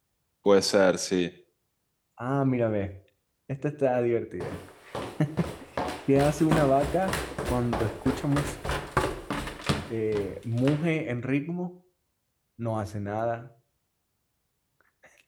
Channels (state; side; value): identical; both; correlation 1.00